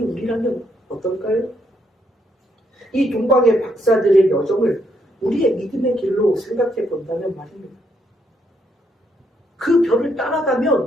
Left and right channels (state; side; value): normal; both; correlation 0.75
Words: 우리라면 어떨까요? 이 동방의 박사들의 여정을 우리의 믿음의 길로 생각해 본다면 말입니다. 그 별을